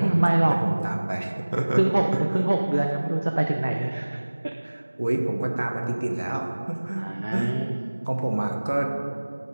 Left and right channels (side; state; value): both; inverted; correlation -1.00